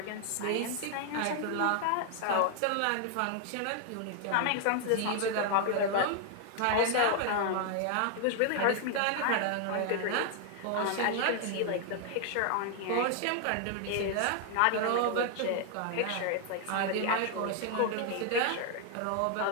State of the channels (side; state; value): both; different; correlation 0.00